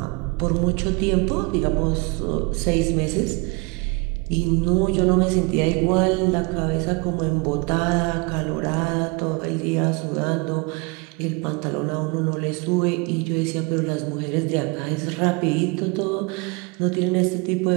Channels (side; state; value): left; quieter; 27.9 dB